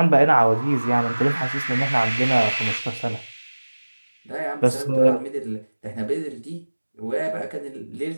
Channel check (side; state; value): both; inverted; correlation -1.00